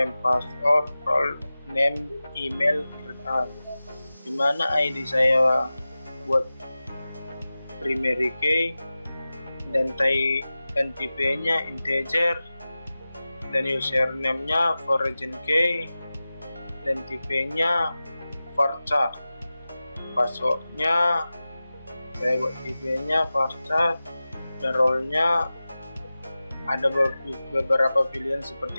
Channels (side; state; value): both; inverted; correlation -0.96